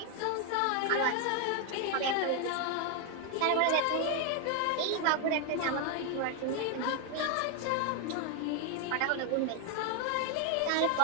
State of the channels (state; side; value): different; both; correlation 0.01